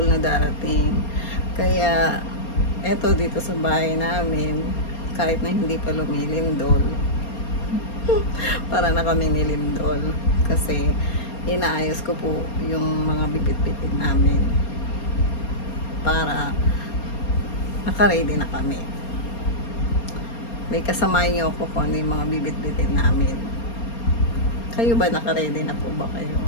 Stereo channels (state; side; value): late; right; 4.3 ms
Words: na darating. Kaya, eto dito sa bahay namin, kahit na hindi pa lumilindol, para na kami nilindol. Kasi, inaayos ko po yung mga bibit-bitin namin para naka-ready na kami. May kasamahan niyo ako kung ano yung mga bibit-bitin namin. Kayo ba, naka-ready na po ba kayo?